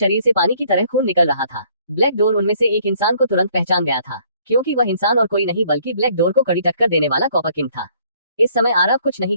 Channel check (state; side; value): inverted; both; correlation -0.62